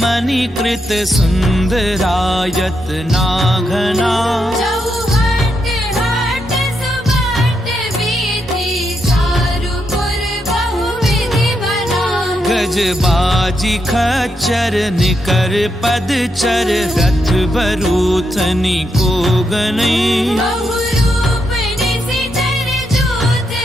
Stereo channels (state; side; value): normal; both; correlation 0.82